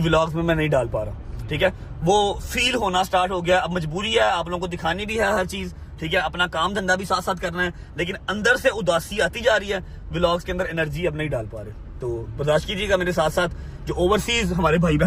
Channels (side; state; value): both; identical; correlation 1.00